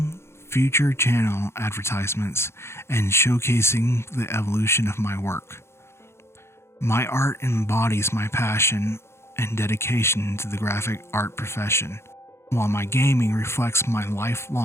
future channel advertisements, and showcasing the evolution of my work. My art embodies my passion and dedication to the graphic art profession, while my gaming reflects my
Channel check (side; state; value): right; late; 0.12 ms